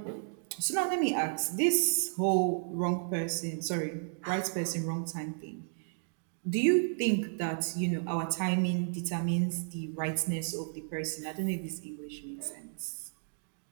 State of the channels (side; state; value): left; silent; digital silence